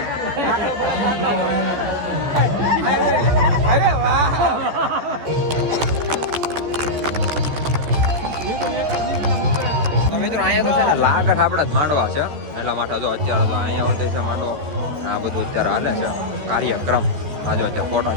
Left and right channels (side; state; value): left; late; 14 ms